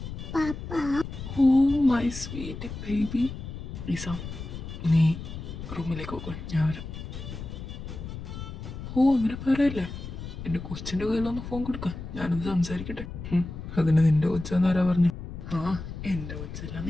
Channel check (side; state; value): left; noise; rumble, 9 dB below the sound